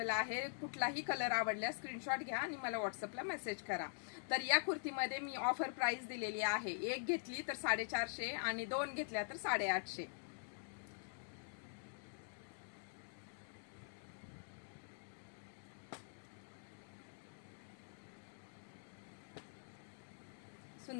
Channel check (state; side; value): silent; right; digital silence